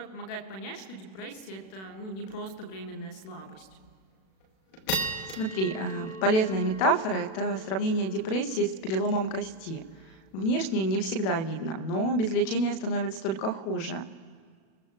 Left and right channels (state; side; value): late; right; 37 ms